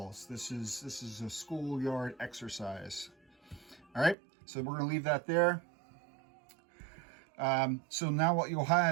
This is a schoolyard exercise. All right, so we're going to leave that there. So now what you'll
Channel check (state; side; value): drops out; left; at 4.2 s